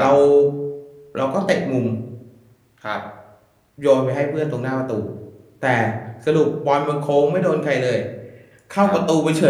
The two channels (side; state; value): both; identical; correlation 1.00